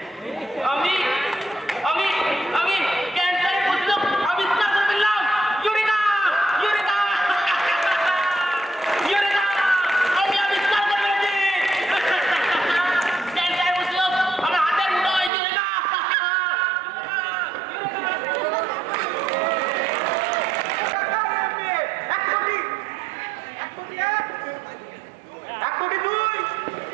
আমি আমি আমি ক্যান্সারের প্রতিরোধ আবিষ্কার করে ফেললাম। ইউরেকা ইউরেকা ইউরেকা, আমি আবিষ্কার করে ফেলেছি ক্যান্সারের প্রতিরোধ আমার হাতের মুঠোয়। ইউরেকা এক কোটি দুই,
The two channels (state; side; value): drops out; left; at 15.3 s